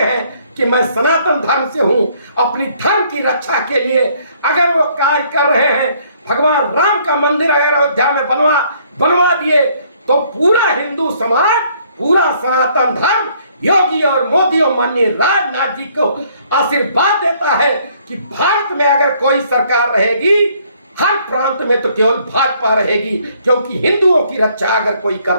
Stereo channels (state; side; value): inverted; both; correlation -0.64